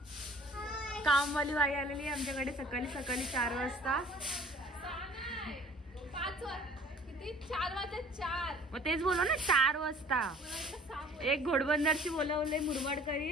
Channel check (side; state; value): both; normal; correlation 0.51